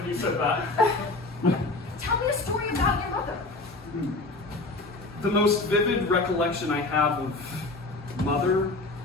you said that. Tell me a story about your mother. The most vivid recollection I have of Mother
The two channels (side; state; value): right; quieter; 3.2 dB